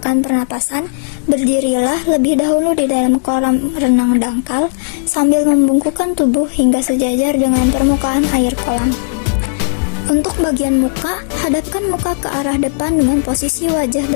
pernapasan, berdirilah lebih dahulu di dalam kolam renang dangkal sambil membungkukkan tubuh hingga sejajar dengan permukaan air kolam. Untuk bagian muka, hadapkan muka ke arah depan dengan posisi wajah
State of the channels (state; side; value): silent; right; digital silence